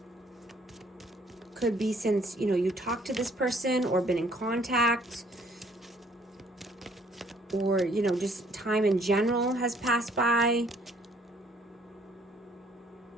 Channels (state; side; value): normal; both; correlation 0.62